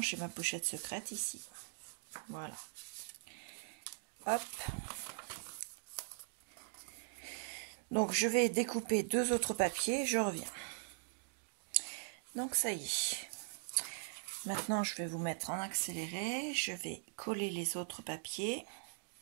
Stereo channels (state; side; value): silent; left; digital silence